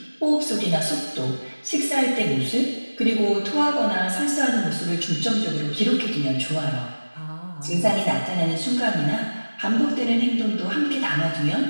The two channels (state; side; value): inverted; both; correlation -1.00